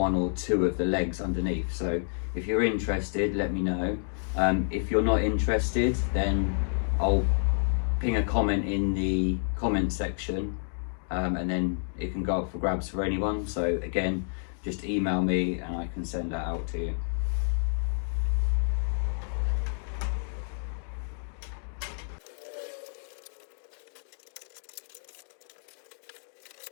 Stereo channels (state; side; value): silent; right; digital silence